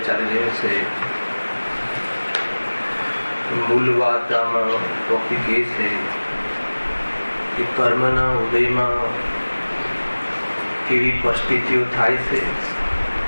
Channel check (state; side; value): inverted; both; correlation -1.00